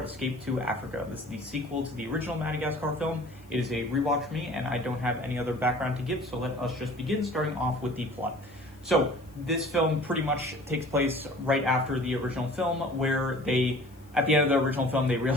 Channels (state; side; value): noise; left; hiss, 29 dB below the sound